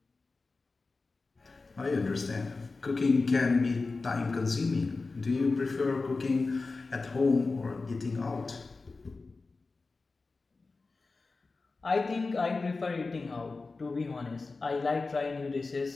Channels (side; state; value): right; quieter; 3.8 dB